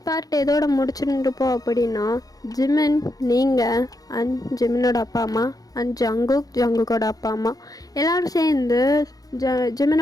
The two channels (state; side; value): late; right; 0.18 ms